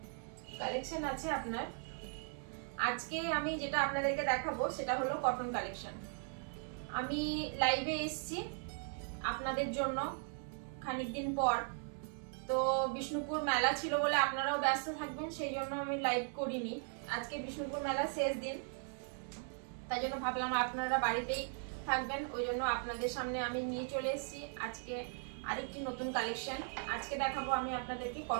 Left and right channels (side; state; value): left; silent; 52 dB below the other